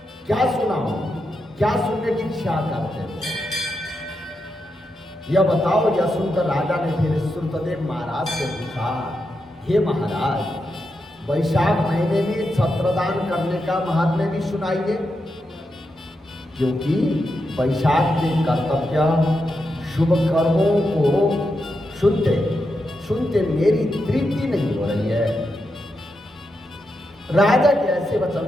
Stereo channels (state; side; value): normal; both; correlation 0.86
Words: क्या सुनाऊं? क्या सुनने की इच्छा करते हो? यह बताओ। यह सुनकर राजा ने फिर श्रुतदेव महाराज से पूछा, हे महाराज, वैशाख महीने में छत्रदान करने का महात्म्य भी सुनाइए, क्योंकि वैशाख के कर्तव्य शुभ कर्मों को सुनते सुनते मेरी तृप्ति नहीं हो रही है। राजा के ऐसे वचन